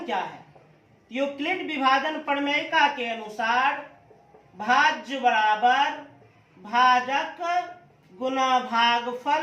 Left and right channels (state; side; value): identical; both; correlation 1.00